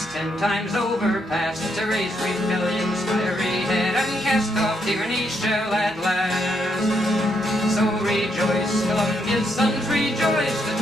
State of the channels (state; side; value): normal; both; correlation 0.77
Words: 10 times overpast to raise rebellion's fiery head and cast off tyranny shall at last. So rejoice, Columbia's sons, rejoice, the